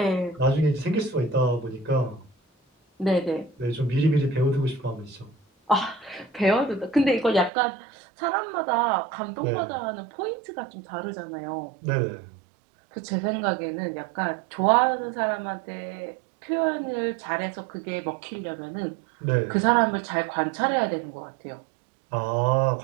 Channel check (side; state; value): left; drops out; at 7.5 s